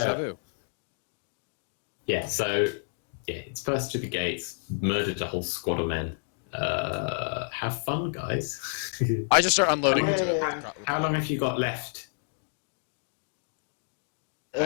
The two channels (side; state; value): right; silent; digital silence